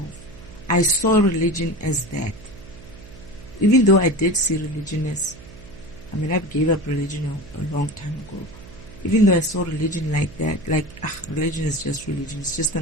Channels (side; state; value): right; noise; hum, 18 dB below the sound